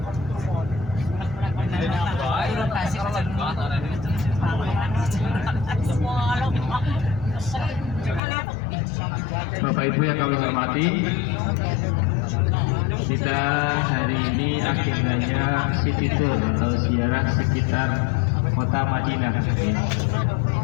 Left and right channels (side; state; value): right; drops out; at 8.2 s